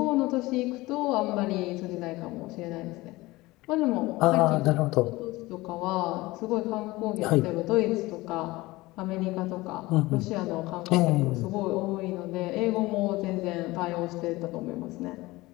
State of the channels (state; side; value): quieter; right; 20.2 dB